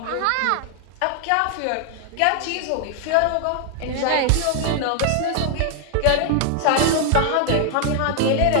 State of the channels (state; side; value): different; both; correlation 0.00